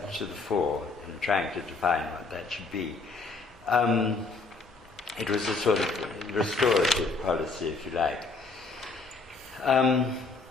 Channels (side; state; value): right; quieter; 4.0 dB